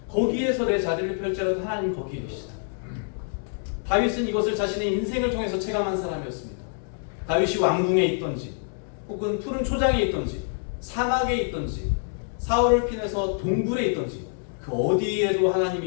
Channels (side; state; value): right; silent; digital silence